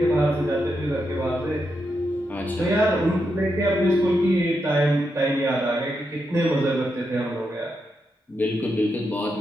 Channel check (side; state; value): both; normal; correlation 0.84